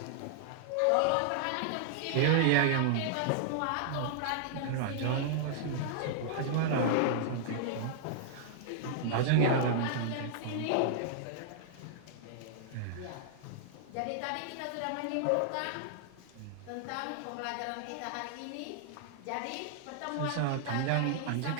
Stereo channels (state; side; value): different; both; correlation -0.01